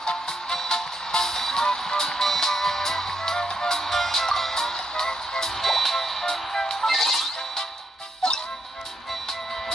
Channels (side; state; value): both; normal; correlation 0.79